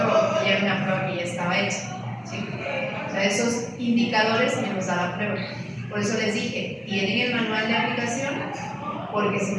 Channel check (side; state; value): both; identical; correlation 1.00